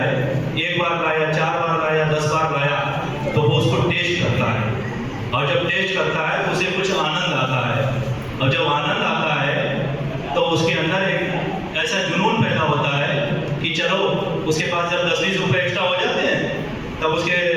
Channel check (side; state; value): both; identical; correlation 1.00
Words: एक बार गाया, 4 बार गाया, 10 बार गाया, तो वो उसको टेस्ट करता है, और जब टेस्ट करता है तो उसे कुछ आनंद आता है, और जब आनंद आता है तो उसके अंदर एक ऐसा जुनून पैदा होता है कि चलो, उसके पास जब 10-20 रुपए एक्स्ट्रा हो जाते हैं तब वो